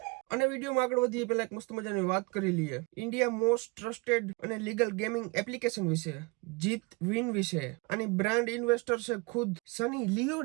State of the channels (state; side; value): quieter; left; 26.5 dB